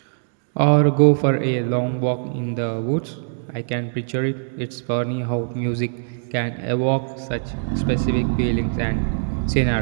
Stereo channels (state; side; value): silent; left; digital silence